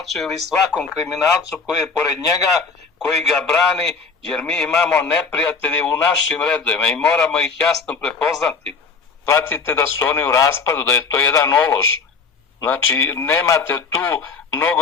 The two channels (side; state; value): right; quieter; 4.9 dB